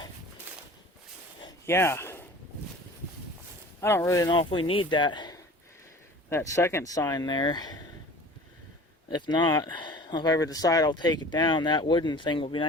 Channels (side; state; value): both; normal; correlation 0.42